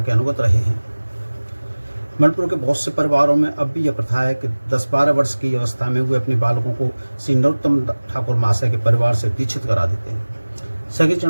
के अनुगत रहे हैं। मणिपुर के बहुत से परिवारों में अब भी यह प्रथा है कि 10-12 वर्ष की अवस्था में वे अपने बालकों को श्री नरोत्तम ठाकुर महाशय के परिवार से दीक्षित करा देते हैं। सखी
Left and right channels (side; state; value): both; inverted; correlation -1.00